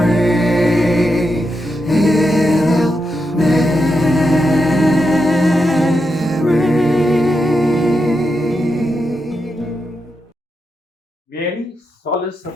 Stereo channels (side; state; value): both; normal; correlation 0.85